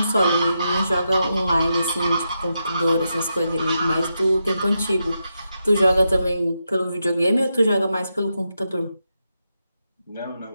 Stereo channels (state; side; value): inverted; both; correlation -0.86